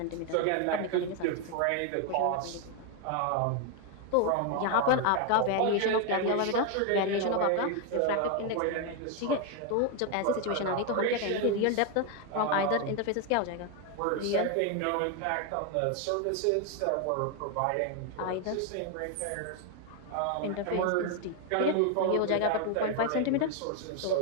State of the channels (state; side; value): different; both; correlation 0.01